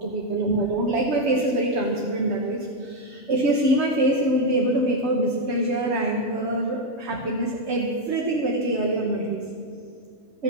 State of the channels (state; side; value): normal; both; correlation 0.02